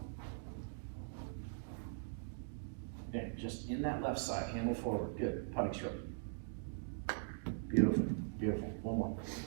Yeah, just in that left side, handle forward. Good. Putting stroke. Beautiful. Beautiful. One more.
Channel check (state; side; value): silent; left; digital silence